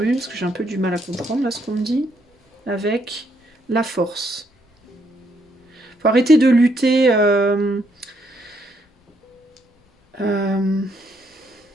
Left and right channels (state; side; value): normal; both; correlation 0.73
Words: parce que j'ai un peu du mal à comprendre là ce qu'on me dit. Avec la force. Faut arrêter de lutter...